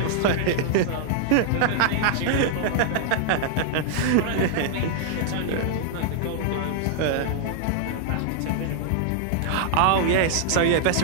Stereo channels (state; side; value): different; both; correlation -0.01